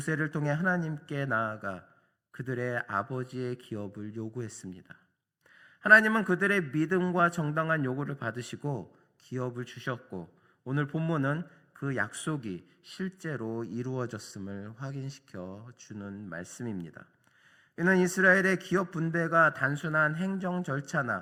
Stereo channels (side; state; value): both; identical; correlation 1.00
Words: 통해 하나님께 나아가 그들의 아버지의 기업을 요구했습니다. 하나님은 그들의 믿음과 정당한 요구를 받으시고 기업을 주셨고 오늘 본문은 그 약속이 실제로 이루어졌음을 확인시켜 주는 말씀입니다. 이는 이스라엘의 기업 분배가 단순한 행정